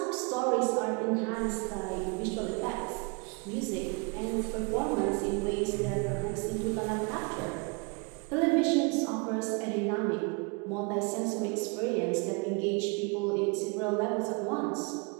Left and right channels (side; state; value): left; quieter; 31.9 dB